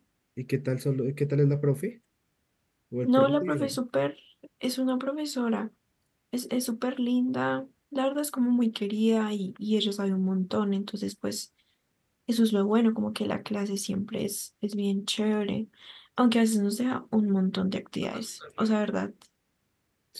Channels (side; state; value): both; identical; correlation 1.00